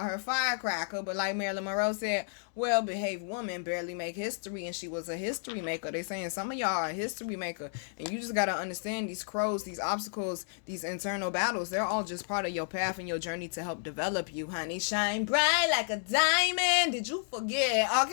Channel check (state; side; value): silent; right; digital silence